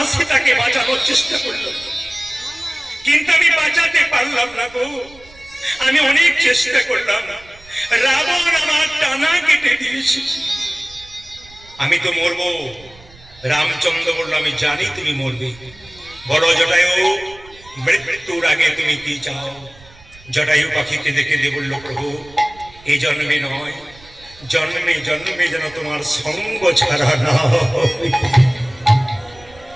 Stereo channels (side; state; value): right; noise; rumble, 24 dB below the sound